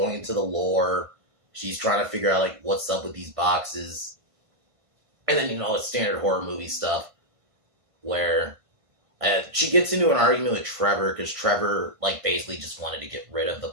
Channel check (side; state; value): left; late; 1.5 ms